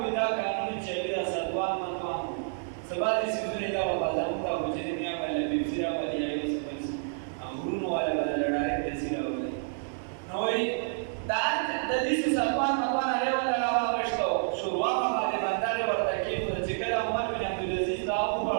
دا قانون چې دا سدوان متوان سبا دې سيزونه دا په ځان دا وځي دنیا باندې بيسيرا باندې یې وسپنس غرونو والا باندې لړای دې سيرا وله نو دا د دې سدوان متوان هغه ولا راوښتو شروع باندې باندې ورته کې چې کله عمر بن عبد العزيز دا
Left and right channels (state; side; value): silent; left; digital silence